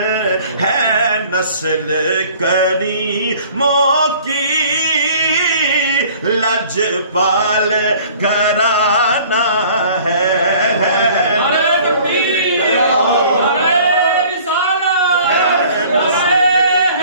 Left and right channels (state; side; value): inverted; both; correlation -0.51